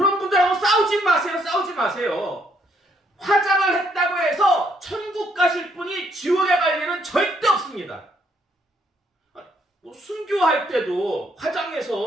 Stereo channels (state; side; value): normal; both; correlation 0.71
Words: 분들하고 싸우지 마세요. 화장을 했다고 해서 천국 가실 분이 지옥에 갈 일은 절대 없습니다. 순교할 때도